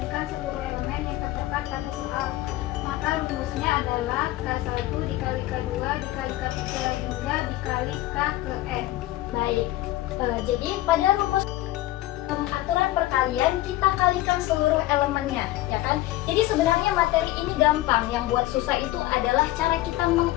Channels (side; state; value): right; quieter; 16.3 dB